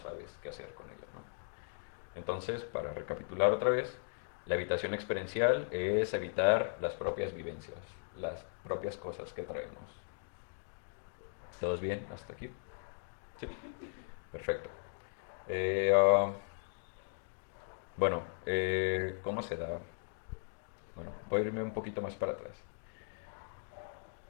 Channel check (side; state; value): right; silent; digital silence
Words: qué hacer con ella, ¿no? Entonces, para recapitular otra vez, la evitación experiencial es evitar las propias vivencias, las propias cosas que traemos. ¿Todos bien hasta aquí? Sí, perfecto. Eh, ah, bueno, ¿cómo se da? Bueno, voy a irme un poquito más para atrás.